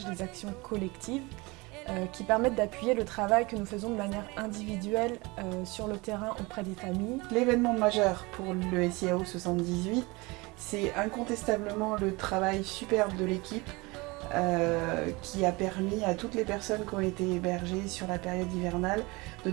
des actions collectives qui permettent d'appuyer le travail que nous faisons de manière individuelle sur le terrain auprès des familles. L'événement majeur pour le SIAO 78, c'est incontestablement le travail superbe de l'équipe qui a permis à toutes les personnes qui ont été hébergées sur la période hivernale de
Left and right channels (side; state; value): left; quieter; 24.6 dB